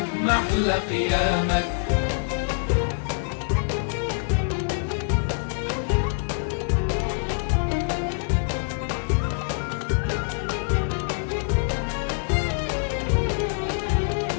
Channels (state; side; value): silent; right; digital silence